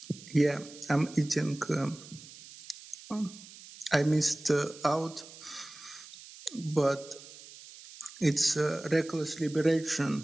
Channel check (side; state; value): right; noise; hiss, 18 dB below the sound